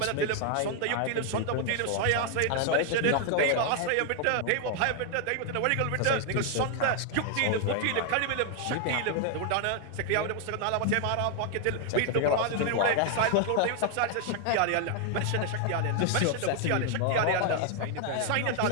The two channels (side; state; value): both; different; correlation 0.00